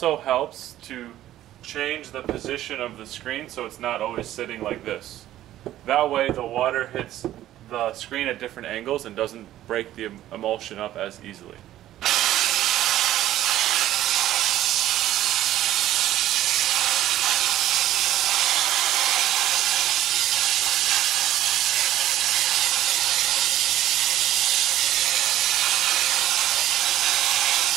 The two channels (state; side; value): quieter; left; 13.4 dB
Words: helps to change the position of the screen so it's not always sitting like this. That way the water hits the screen at different angles and doesn't break the emulsion up as easily.